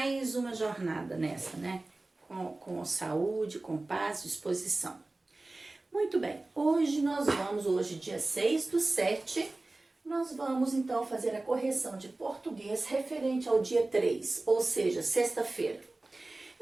uma jornada nessa, né? Com saúde, com paz, disposição. Muito bem, hoje dia 6/7, nós vamos então fazer a correção de português referente ao dia 3, ou seja, sexta-feira.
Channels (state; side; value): quieter; left; 3.0 dB